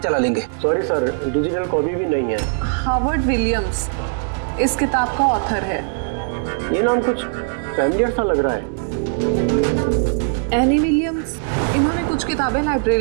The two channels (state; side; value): silent; left; 57 dB below the other